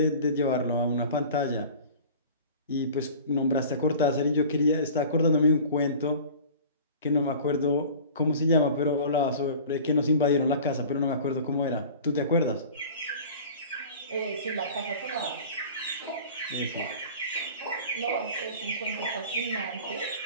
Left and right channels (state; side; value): inverted; both; correlation -0.41